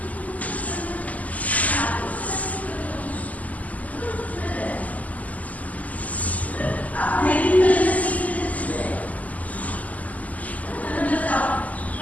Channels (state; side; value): late; right; 0.075 ms